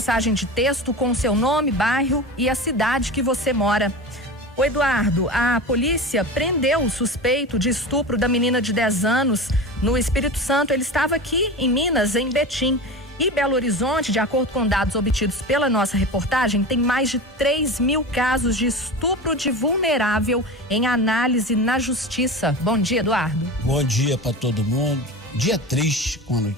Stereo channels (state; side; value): normal; both; correlation 0.29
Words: de texto com o seu nome, bairro e a cidade que você mora. O Eduardo, a polícia prendeu o suspeito de estupro da menina de 10 anos no Espírito Santo. Ele estava aqui em Minas, em Betim. E Belo Horizonte, de acordo com dados obtidos pela nossa reportagem, tem mais de 3.000 casos de estupro de vulnerável em análise na justiça. Bom dia, Eduardo. Bom dia para todo mundo. Dia triste com a